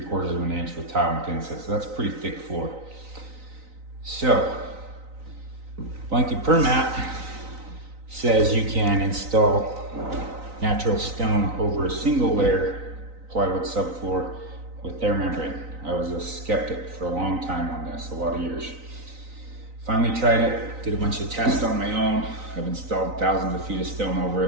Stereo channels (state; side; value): late; left; 3.9 ms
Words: of an inch with tile and thin set. So that's a pretty thick floor. So, blanket per mat says you can install natural stone over a single layer plywood subfloor with their membrane. I was a skeptic for a long time on this, a lot of years. Finally tried it, did a bunch of tests on my own. I've installed thousands of feet of stone over